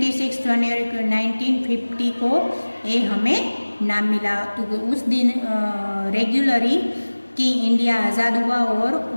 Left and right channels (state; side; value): inverted; both; correlation -1.00